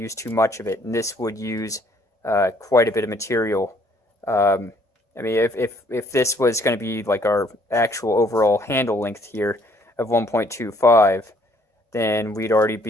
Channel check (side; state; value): both; normal; correlation 0.63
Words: use too much of it, and this would use quite a bit of material. I mean, if this was going to be like our actual overall handle length here of 1.25, then we'd already